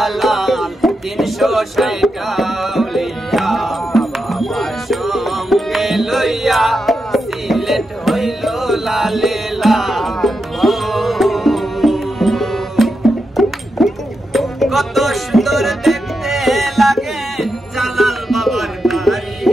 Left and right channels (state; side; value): normal; both; correlation 0.86